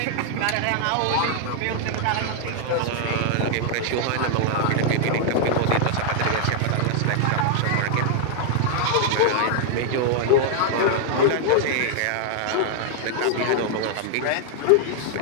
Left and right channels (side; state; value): both; different; correlation 0.00